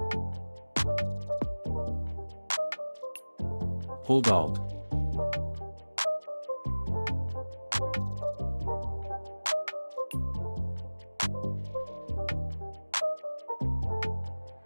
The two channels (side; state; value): both; inverted; correlation -1.00